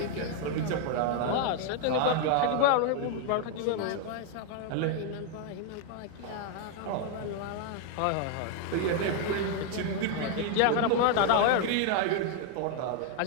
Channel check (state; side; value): different; both; correlation 0.00